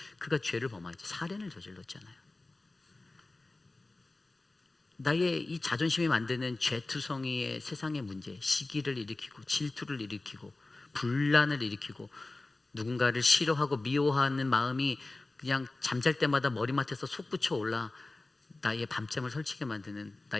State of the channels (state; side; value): quieter; right; 3.1 dB